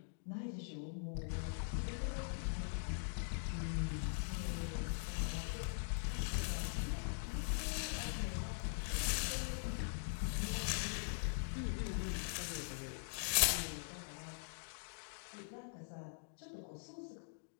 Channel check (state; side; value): silent; right; digital silence